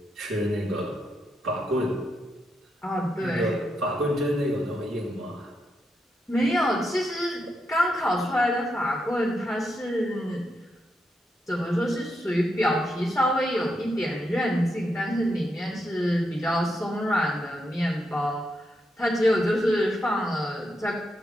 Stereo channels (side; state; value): both; normal; correlation 0.83